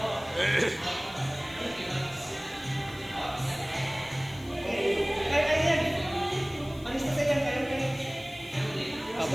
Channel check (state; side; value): noise; left; hiss, 23 dB below the sound